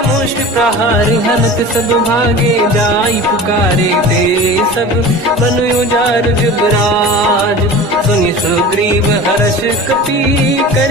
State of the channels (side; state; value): both; normal; correlation 0.36